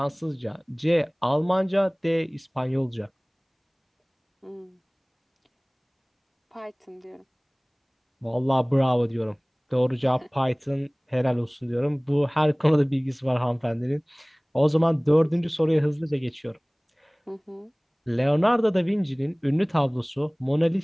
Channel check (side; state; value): both; identical; correlation 1.00